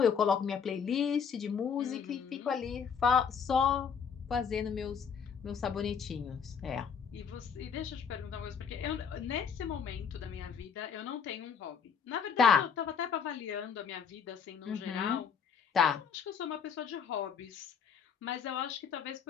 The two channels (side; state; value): right; quieter; 6.8 dB